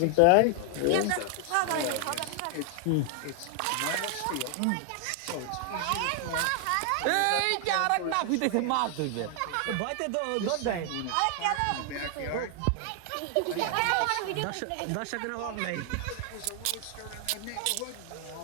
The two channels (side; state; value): both; different; correlation 0.00